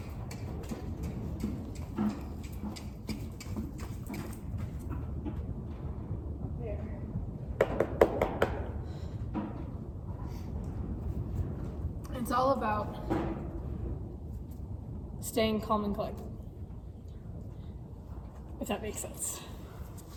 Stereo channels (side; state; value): both; identical; correlation 1.00